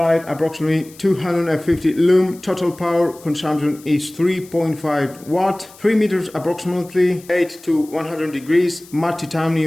approximately 250 lumen, total power consumption is 3.5 watt, 3 meters approximately, 8 to 100 degrees, matte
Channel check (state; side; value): noise; left; hiss, 23 dB below the sound